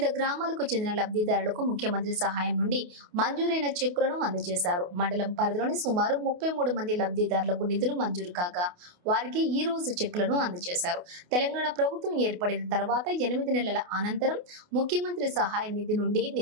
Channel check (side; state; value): left; late; 28 ms